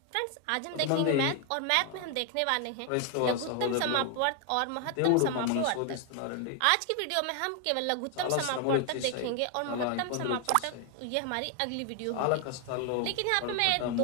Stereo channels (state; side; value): different; both; correlation 0.00